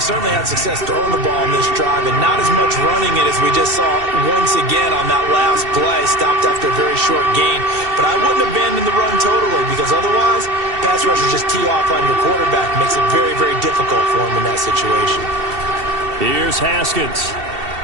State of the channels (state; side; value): late; left; 2.7 ms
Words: had success throwing the ball in this drive and not as much running it as we just saw once again on that last play. Stopped after a very short gain. But I wouldn't abandon the run totally because otherwise, pass rushers just tee off on your quarterback. Makes it very, very difficult for him in that situation. Here's Haskins.